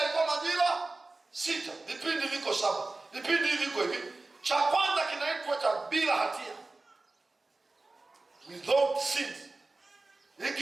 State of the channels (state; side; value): quieter; left; 3.3 dB